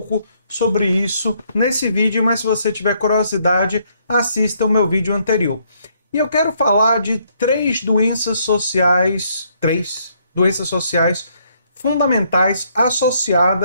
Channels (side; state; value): both; inverted; correlation -0.70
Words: sobre isso nesse vídeo, mas se você tiver curiosidade, assista o meu vídeo anterior. E eu quero falar de três doenças sociais fundamentais